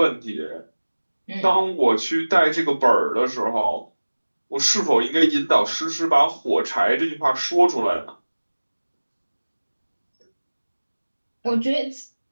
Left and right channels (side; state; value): both; inverted; correlation -1.00